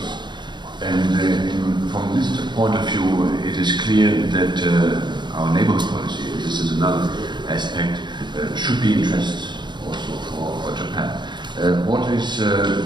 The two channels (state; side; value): late; left; 0.22 ms